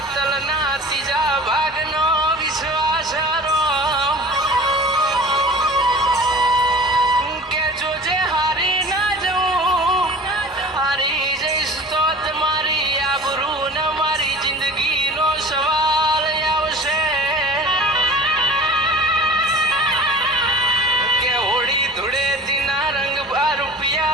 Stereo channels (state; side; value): normal; both; correlation 0.39